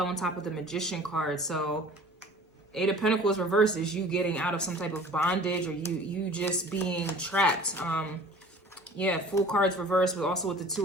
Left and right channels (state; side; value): normal; both; correlation 0.46